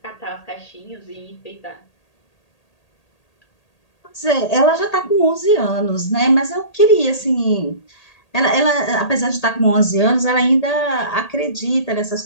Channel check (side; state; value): right; late; 1.8 ms